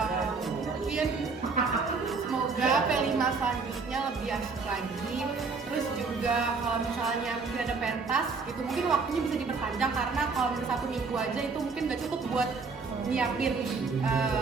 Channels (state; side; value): quieter; left; 4.6 dB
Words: Mungkin semoga P5 selanjutnya lebih asik lagi. Terus juga kalau misalnya mungkin ada pentas gitu, mungkin waktunya bisa diperpanjang, karena kalau misalnya 1 minggu aja itu mungkin nggak cukup buat nyiapin